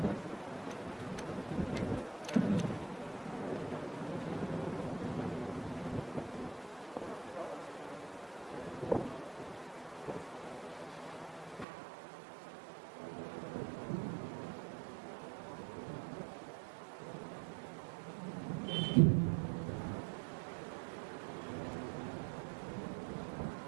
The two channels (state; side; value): drops out; left; at 11.7 s